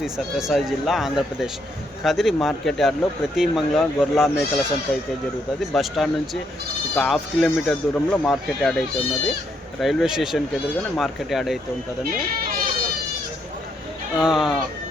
సత్యసాయి జిల్లా, ఆంధ్రప్రదేశ్. కదిరి మార్కెట్ యార్డ్లో ప్రతి మంగళవారం గొర్రెల మేకల సంత అయితే జరుగుతుంది. బస్టాండ్ నుంచి ఒక 1/2 కిలోమీటర్ దూరంలో మార్కెట్ యార్డ్ అయితే ఉన్నది. రైల్వే స్టేషన్కి ఎదురుగానే మార్కెట్ యార్డ్ అయితే ఉంటుందండి.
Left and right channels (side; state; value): both; normal; correlation 0.75